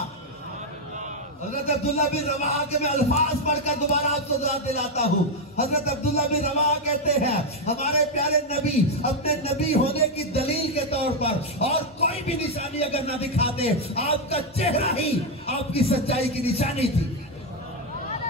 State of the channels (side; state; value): both; normal; correlation 0.04